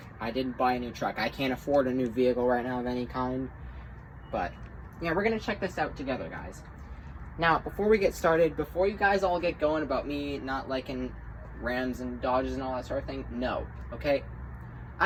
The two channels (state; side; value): identical; both; correlation 1.00